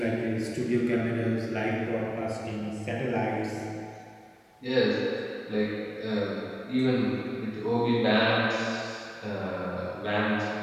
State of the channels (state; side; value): identical; both; correlation 1.00